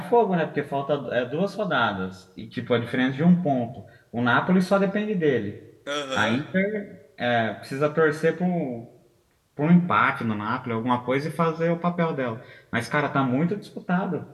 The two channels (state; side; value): identical; both; correlation 1.00